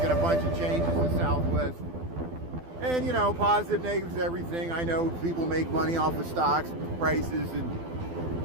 a bunch of changes to Southwest. And, you know, positive, negatives, everything. I know people make money off of stocks, prices,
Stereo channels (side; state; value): left; late; 12 ms